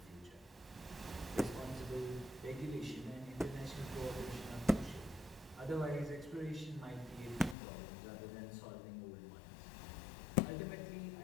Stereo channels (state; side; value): drops out; right; at 7.6 s